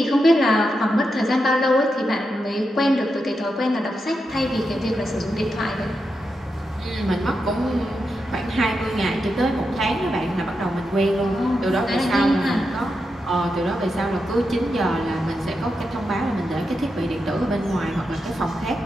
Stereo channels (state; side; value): normal; both; correlation 0.86